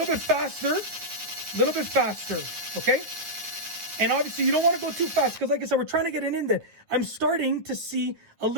bit faster, okay? And obviously you don't want to go too fast, because like I said, we're trying to get an indent. I'm starting to see a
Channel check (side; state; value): left; late; 9.6 ms